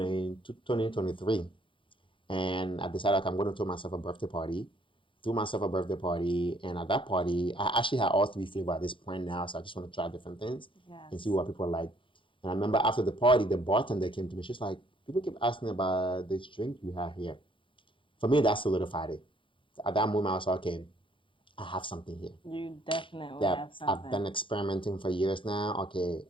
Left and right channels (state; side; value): late; right; 0.25 ms